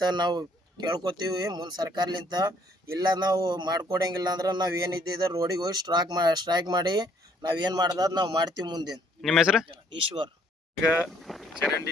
ನಾವು ಕೇಳ್ಕೊತೀವಿ ಮುಂದೆ ಸರ್ಕಾರಲಿಂತ. ಇಲ್ಲ ನಾವು ಮಾಡ್ಕೊಡಂಗಿಲ್ಲ ಅಂದ್ರೆ ನಾವು ಏನಿದ್ದಿದ್ದ ರೋಡಿಗೆ ಹೋಗಿ ಸ್ಟ್ರೈಕ್ ಮಾಡಿ ನಾವೇನು ಮಾಡ್ದ ನಾವು ಮಾಡ್ತೀವಿ ಮುಂದೆ. ನಿಮ್ಮ ಹೆಸರು? ಈಶ್ವರ್. ಈಗ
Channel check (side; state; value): both; normal; correlation 0.64